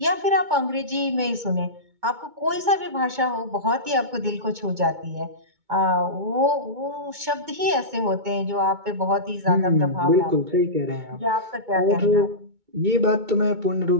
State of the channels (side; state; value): left; late; 2.2 ms